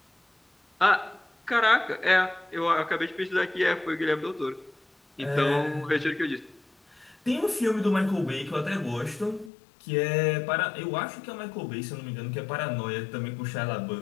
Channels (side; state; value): right; drops out; at 9.5 s